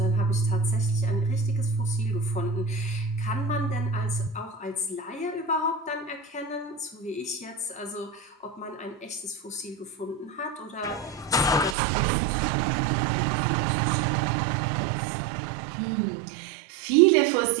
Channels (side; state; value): left; drops out; at 11.8 s